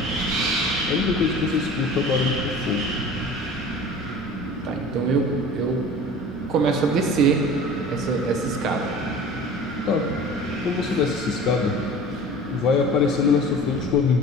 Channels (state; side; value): normal; both; correlation 0.41